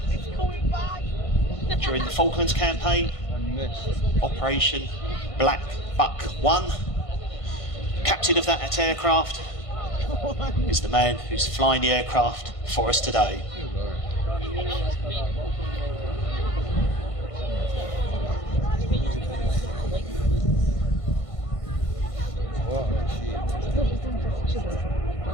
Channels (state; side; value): late; right; 1.5 ms